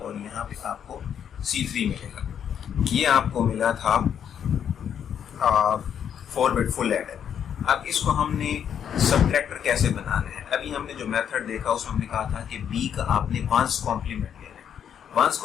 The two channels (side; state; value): right; quieter; 8.6 dB